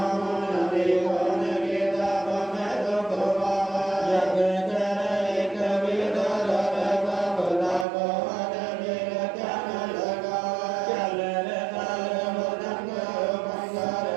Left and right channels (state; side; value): drops out; left; at 7.9 s